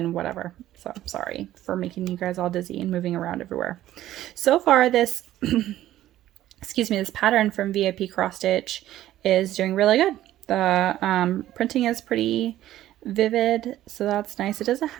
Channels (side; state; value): left; quieter; 13.6 dB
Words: whatever. So I'm sorry for making you guys all dizzy and moving around everywhere. So far this excuse me, this pattern from Vipcrossstitch is doing really good. The printing is pretty vivid, so that's nice. It doesn't